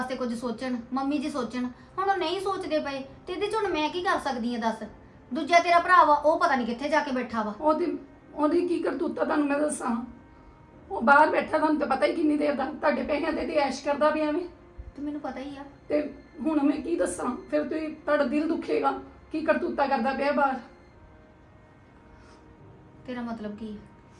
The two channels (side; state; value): both; identical; correlation 1.00